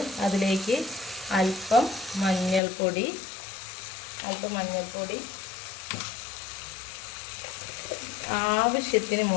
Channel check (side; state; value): right; drops out; at 2.6 s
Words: അതിലേക്ക് അല്പം മഞ്ഞൾപ്പൊടി, ആവശ്യത്തിന്